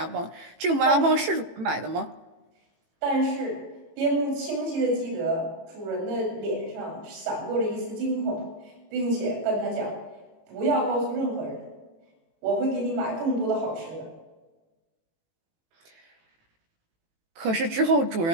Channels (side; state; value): left; late; 18 ms